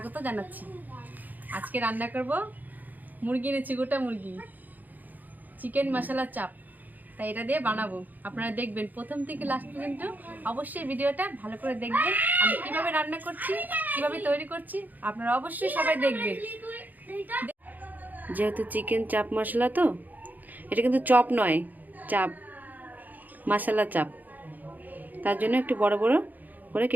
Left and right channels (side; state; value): left; late; 0.083 ms